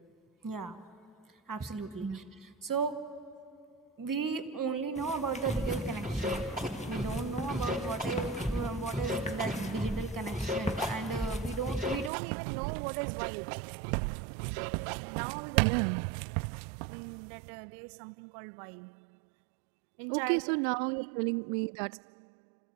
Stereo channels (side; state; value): left; drops out; at 12.1 s